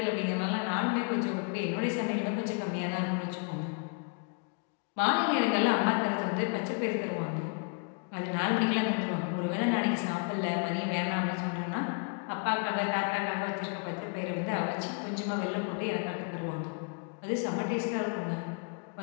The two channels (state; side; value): quieter; right; 36.8 dB